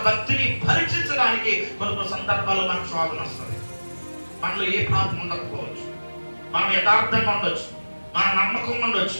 భక్తిని పరీక్షించడానికి కొన్ని సందర్భాల్లో మనకు శోధన వస్తుంది. మనలో ఏ పాపం ఉండకపోవచ్చు, మనం యథార్థంగా ఉండొచ్చు, మన నమ్మకం ఉండొచ్చు,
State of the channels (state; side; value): inverted; both; correlation -1.00